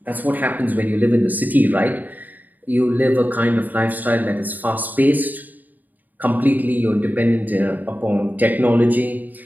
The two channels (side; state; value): left; late; 0.084 ms